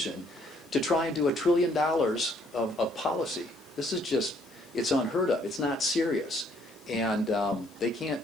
to try and do $1 trillion of policy. This is just, it's unheard of. It's not serious. And they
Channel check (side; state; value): left; noise; hiss, 27 dB below the sound